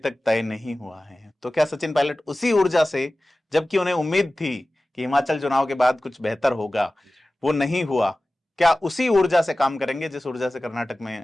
तय नहीं हुआ है। तो क्या सचिन पायलट उसी ऊर्जा से, जबकि उन्हें उम्मीद थी कि हिमाचल चुनाव के बाद कुछ बेहतर होगा, वो नहीं हुआ, क्या उसी ऊर्जा से काम करेंगे जिस ऊर्जा से कर्नाटक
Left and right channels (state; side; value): normal; both; correlation 0.96